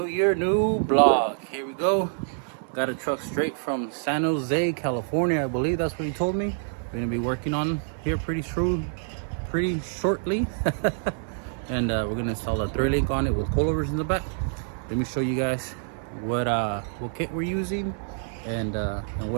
another new vlog. Here we go. Got a truck straight from San Jose, California. I believe that's what he told me. We're gonna be working on here pretty shortly. And we're gonna install a thread link on it with coilovers in the back. Let me show you guys what kit we're using and what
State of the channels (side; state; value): left; silent; digital silence